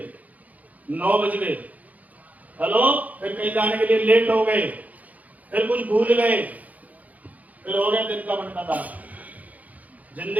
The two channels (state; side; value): late; left; 0.077 ms